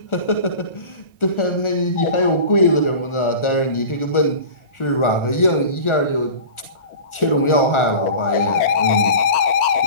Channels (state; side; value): late; right; 1.4 ms